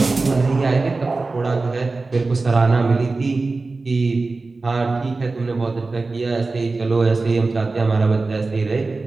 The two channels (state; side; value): quieter; left; 3.7 dB